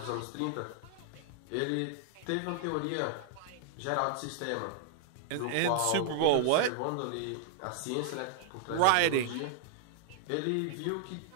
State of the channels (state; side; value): different; both; correlation 0.00